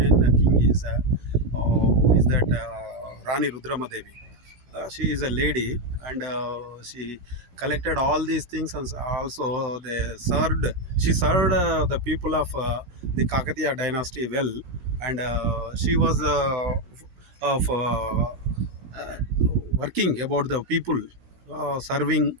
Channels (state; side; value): late; left; 17 ms